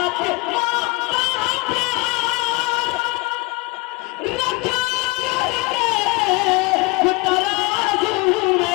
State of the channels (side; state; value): right; quieter; 24.8 dB